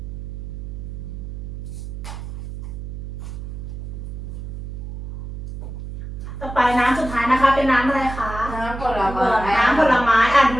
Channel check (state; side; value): noise; right; hum, 8 dB below the sound